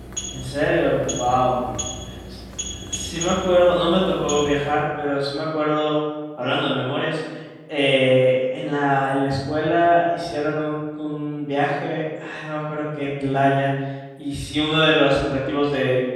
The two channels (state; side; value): identical; both; correlation 1.00